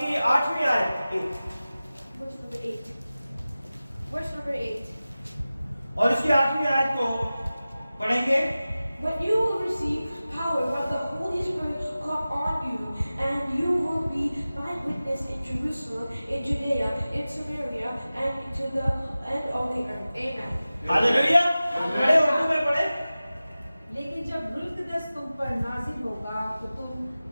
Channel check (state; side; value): inverted; both; correlation -0.96